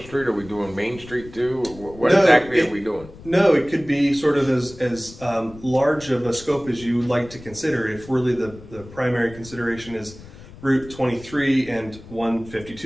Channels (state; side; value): noise; left; rumble, 18 dB below the sound